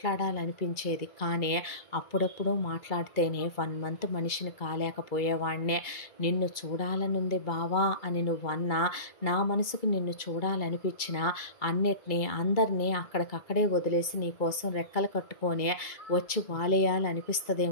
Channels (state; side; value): late; right; 2.3 ms